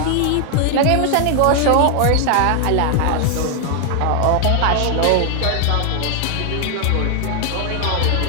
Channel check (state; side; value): different; both; correlation 0.00